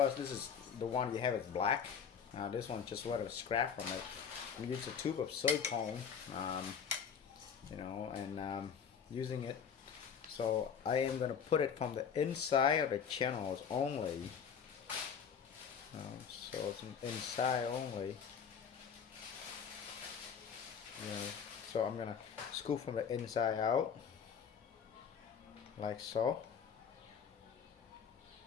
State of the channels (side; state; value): right; quieter; 7.0 dB